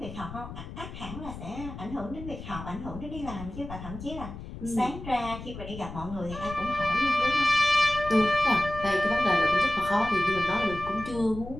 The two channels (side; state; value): left; noise; rumble, 11 dB below the sound